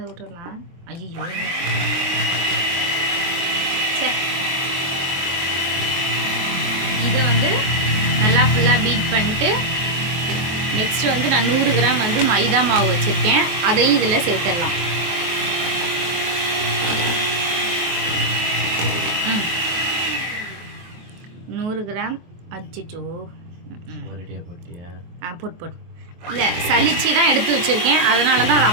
விட்டுடலாம். ஐயோ, இதை வந்து நல்லா ஃபுல்லாக பீட் பண்ணிட்டு நெக்ஸ்ட் வந்து நான் 100 கிராம் வந்து மைதா மாவு வச்சுருக்கேன், அதையும் இதில் சேர்த்துடலாம். கிராம் அச்சிச்சோ போட்டியா? போட்டு இல்லை, சளிச்சு தான் எடுத்து வச்சுருக்கேன், அதனால தான் அதை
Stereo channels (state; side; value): late; left; 23 ms